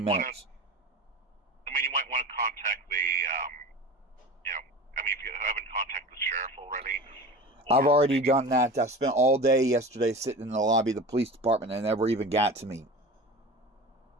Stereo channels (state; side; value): normal; both; correlation 0.33